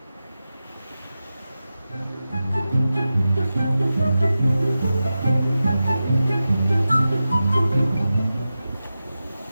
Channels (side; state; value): both; inverted; correlation -0.93